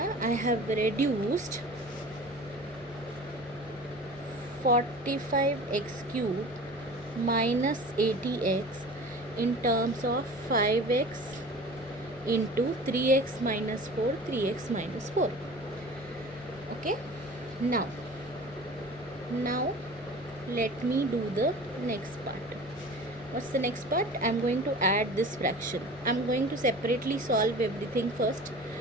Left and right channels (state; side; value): normal; both; correlation 0.40